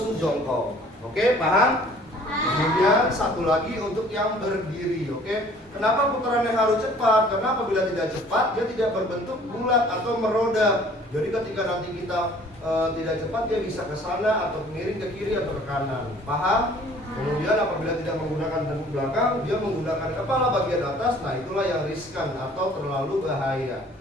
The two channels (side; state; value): both; normal; correlation 0.53